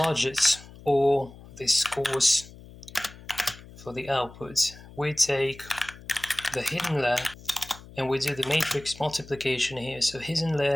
or the scores for the output, we take the hidden layer and we do the matrix multiplication here. So hidden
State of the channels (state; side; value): noise; left; hum, 19 dB below the sound